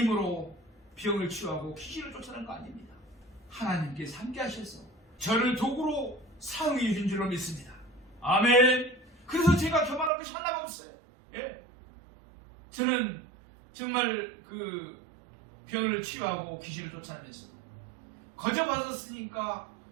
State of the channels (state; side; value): drops out; left; at 10.1 s